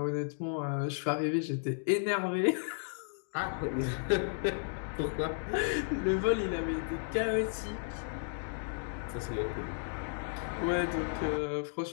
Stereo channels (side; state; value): right; silent; digital silence